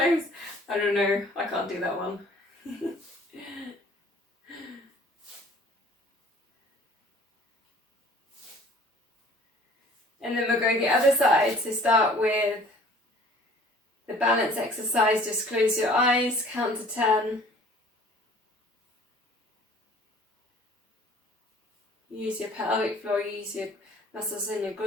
I don't know, I can't do that one. And then we'll go the other side. So start with the balance exercise. Just close your eyes, count to 10. Use your pelvic floor, use your muscles in your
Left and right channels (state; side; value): normal; both; correlation 0.52